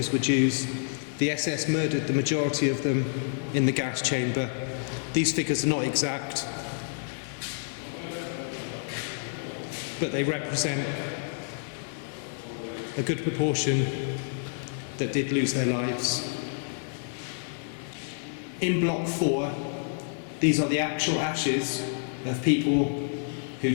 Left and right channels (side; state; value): right; silent; 59 dB below the other